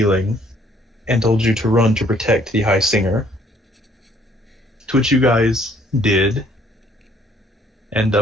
and told you to run to protect the High Singer, to which you guys did. And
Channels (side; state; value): both; normal; correlation 0.62